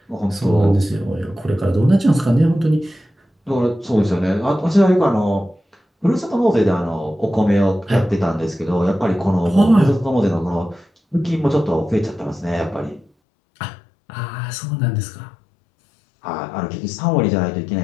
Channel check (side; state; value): right; drops out; at 13.1 s